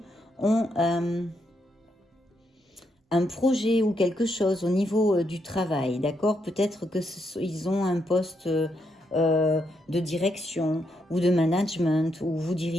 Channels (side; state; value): both; normal; correlation 0.79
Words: ont un projet ou quelque chose au niveau du travail, d'accord? Peut-être qu'ils ont un poste de direction ou de management, ou vous